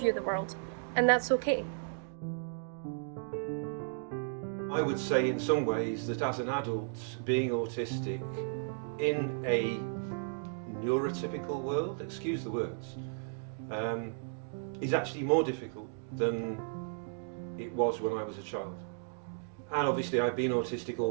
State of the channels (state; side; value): silent; left; digital silence